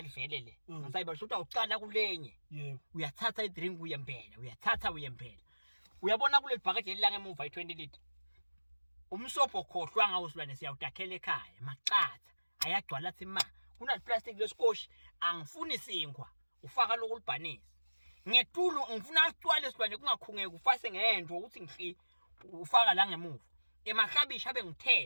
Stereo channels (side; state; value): both; inverted; correlation -1.00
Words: vele le ngisayibali shothi awuqala kulenye yebo uyathatha idrink uyempela uyabona kule bhakede elilanga emuva i20 liter umsobho khohlwa ngawo silwane siyawudakhela ekhaya maqatha ayagcwala athi ma kuna plastic lesikoshi angifuni sinkwa ufaka lokulibhanisa ngetulu ngifuna acwale silwane kungakhungeke ufase ngento ukuthi ngihli ufaka la ngemuva emahlabishi abe